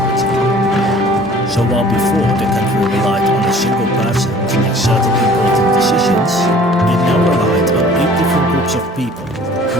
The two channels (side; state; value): both; normal; correlation 0.50